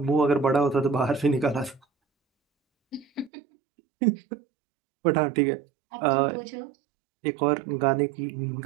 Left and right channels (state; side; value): drops out; left; at 3.3 s